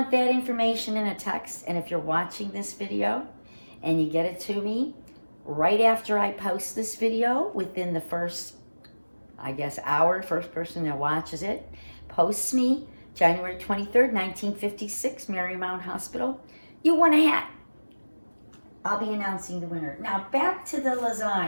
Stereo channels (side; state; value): both; inverted; correlation -1.00